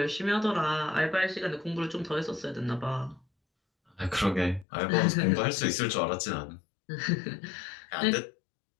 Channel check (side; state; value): right; drops out; at 4.7 s